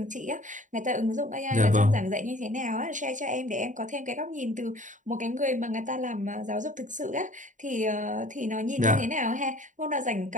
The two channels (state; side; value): late; left; 0.37 ms